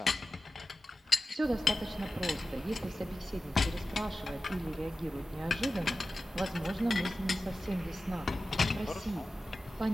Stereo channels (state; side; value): normal; both; correlation 0.94